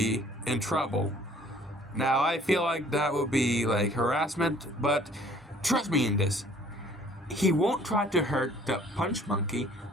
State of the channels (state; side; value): normal; both; correlation 0.56